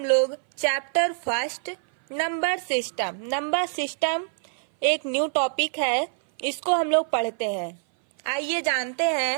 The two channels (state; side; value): silent; left; 57 dB below the other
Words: लोग चैप्टर फर्स्ट नंबर सिस्टम एक न्यू टॉपिक है, इसको हम लोग पढ़ते हैं। आइए जानते